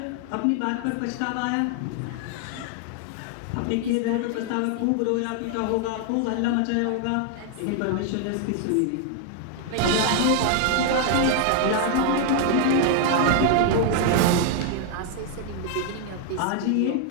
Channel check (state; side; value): different; both; correlation 0.00